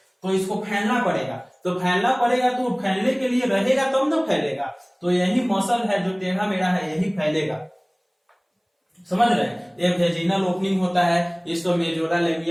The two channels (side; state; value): both; identical; correlation 1.00